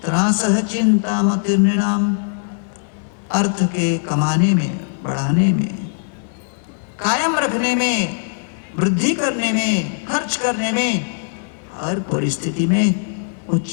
त्रासः चिंतामतिर्नृणाम। अर्थ के कमाने में, बढ़ाने में, कायम रखने में, वृद्धि करने में, खर्च करने में, हर परिस्थिति में वो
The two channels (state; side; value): silent; right; 66 dB below the other